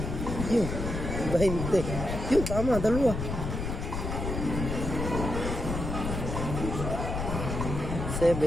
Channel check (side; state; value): left; noise; rumble, 3 dB below the sound